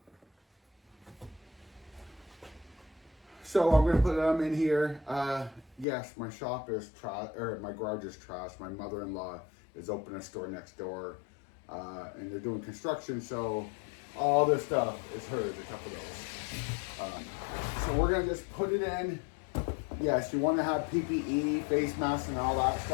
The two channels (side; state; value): right; drops out; at 5.9 s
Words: So I'm gonna put them in here. Yes, my shop is trash, or my garage is trash. My mother-in-law is opening a store next door, and they're doing construction, so all this stuff is hers, a couple of those. So we're gonna just put it in. Yes, you wanna have PPE, face masks, and all that